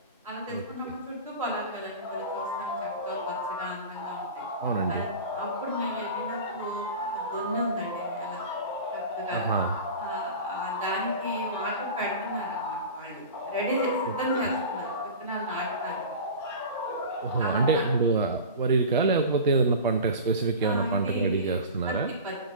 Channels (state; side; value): inverted; both; correlation -0.33